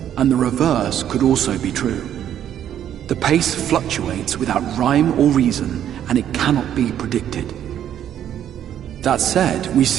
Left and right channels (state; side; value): quieter; left; 10.3 dB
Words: and the reverse could also be true. The pace fluctuates without rhyme or reason, and it cannot be predicted. That said, we